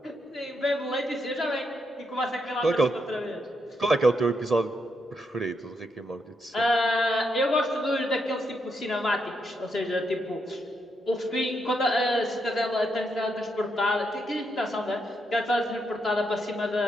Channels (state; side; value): normal; both; correlation 0.80